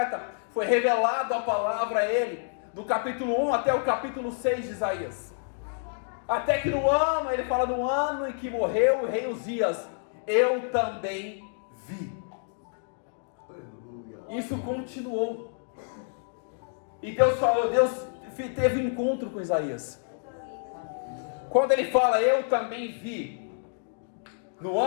foi revelado a palavra a ele, do capítulo 1 até o capítulo 6 de Isaías. Até que no ano, ele fala no ano em que morreu o rei Uzias, eu também vi. Isso continuou. E Deus teve um encontro com Isaías. Quando ele fala, eu também vi, no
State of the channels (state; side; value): silent; right; digital silence